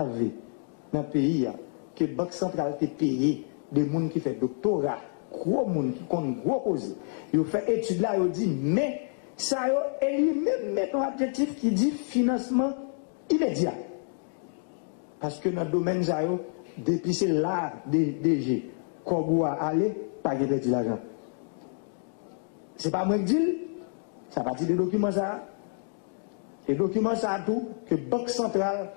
dans le pays que la Banque centrale a payé des gens qui font doctorat, gros gens qui ont gros cause. Ils ont fait étude là, ils ont dit, mais ça et lui-même met un objectif qui dit financement immédiat. Parce que dans le domaine, depuis c'est là, DG, qu'on doit aller, pas de perdre l'argent. C'est pas moi qui dis, ça partit des documents ça. Les documents ça tout, que Banque centrale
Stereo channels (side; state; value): right; silent; 59 dB below the other